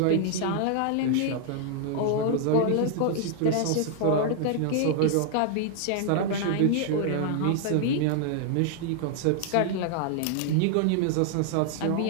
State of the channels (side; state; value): both; different; correlation -0.01